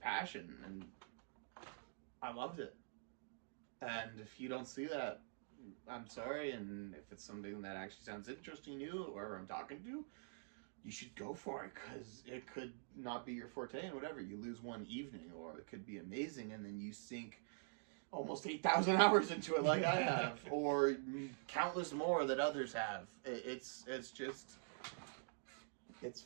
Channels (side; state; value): left; silent; digital silence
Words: and I loved it. And if you don't see that, I'm sorry, and if it's something that actually sounds interesting to you, or I'm talking to, you should go for it, because it could not be your forte, and whatever, you lose one evening, or it could be amazing, and then you sink almost 8,000 hours into it like I have, or countless more that others have. It's just, it's